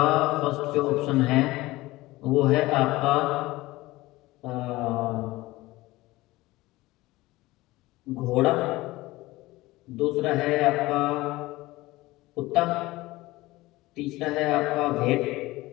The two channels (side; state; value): right; quieter; 19.1 dB